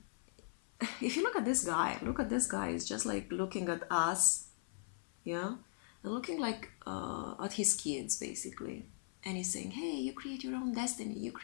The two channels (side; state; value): right; silent; 52 dB below the other